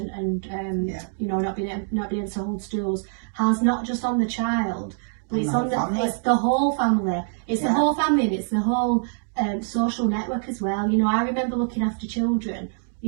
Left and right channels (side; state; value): left; silent; 62 dB below the other